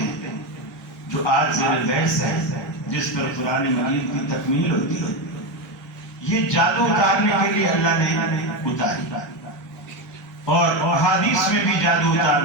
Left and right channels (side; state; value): both; normal; correlation 0.14